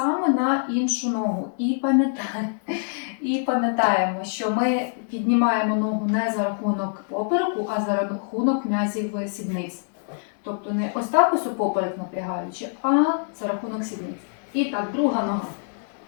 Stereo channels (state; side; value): silent; right; digital silence